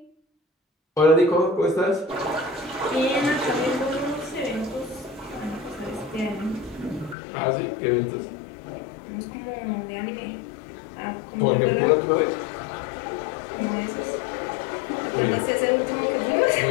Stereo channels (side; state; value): right; drops out; at 7.2 s